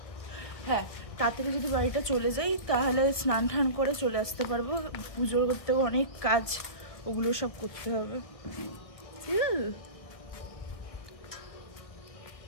হ্যাঁ তাড়াতাড়ি যদি বাড়িটা চলে যাই তাহলে স্নান টান করে চলে আসতে পারবো। পুজো করতেও অনেক কাজ, ওগুলো সব করতে হবে।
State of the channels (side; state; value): right; late; 1.8 ms